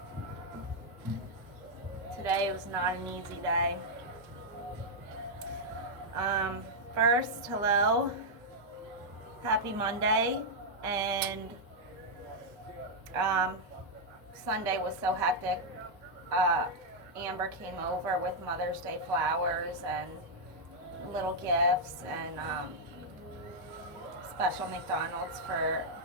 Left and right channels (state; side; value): normal; both; correlation -0.04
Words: Today was not an easy day. First, hello. Happy Monday. And Sunday was so hectic. Amber came over with Mother's Day flowers and little gifts and special McDonald's for